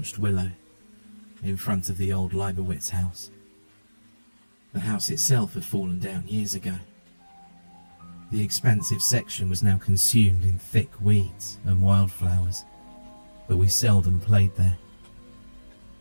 willow, in front of the old Leibowitz house. The house itself had fallen down years ago. The expansive section was now consumed in thick weeds and wildflowers, but we seldom played there.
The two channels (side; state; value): both; inverted; correlation -1.00